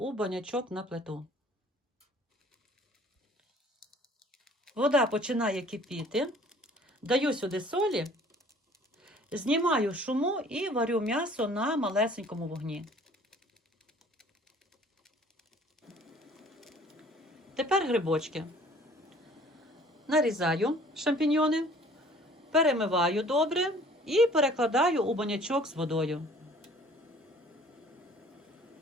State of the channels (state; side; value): normal; both; correlation 0.53